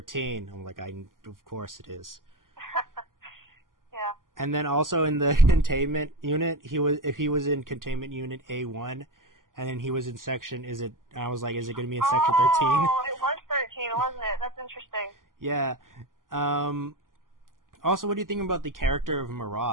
I'm like, of course it is. Yeah. And then also in the containment unit, if he was in containment unit A1, and then he was in section, I was like, is it going to be in section 13? Oh, it was 13, wasn't it? That's interesting. Yeah. Also, what do you think about the character of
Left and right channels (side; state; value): left; late; 0.90 ms